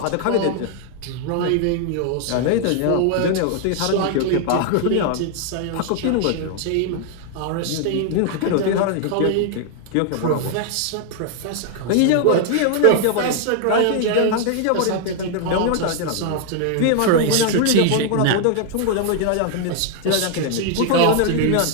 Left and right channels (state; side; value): different; both; correlation 0.00